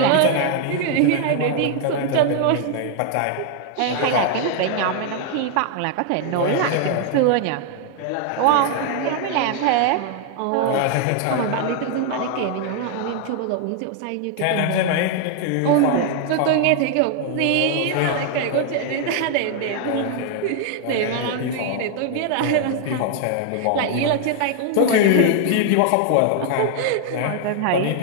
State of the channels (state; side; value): different; both; correlation 0.00